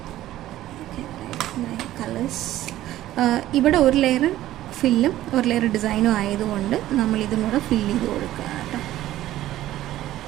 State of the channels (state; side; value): quieter; left; 14.2 dB